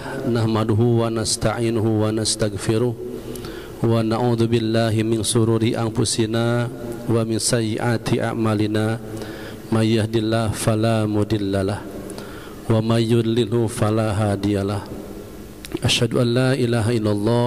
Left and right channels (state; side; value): identical; both; correlation 1.00